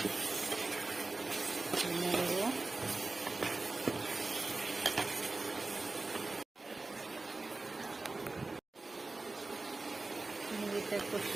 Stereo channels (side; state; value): left; quieter; 3.4 dB